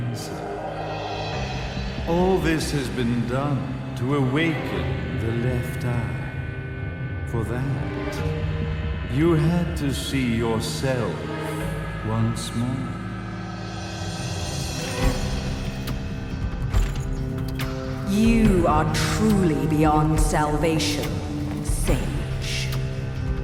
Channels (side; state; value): both; identical; correlation 1.00